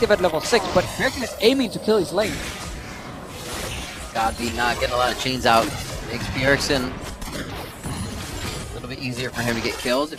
at level 6, but Bjergsen is aiming to kill his lane. Godby not getting a lot of chains out. Makes Bjergsen a little bit easier for him to get kills if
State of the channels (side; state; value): both; identical; correlation 1.00